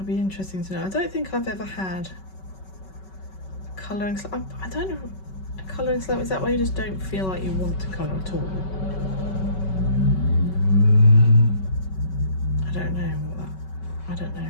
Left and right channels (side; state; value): right; late; 5.3 ms